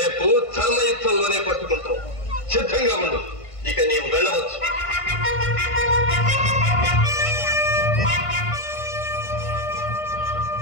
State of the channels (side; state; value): right; late; 1.5 ms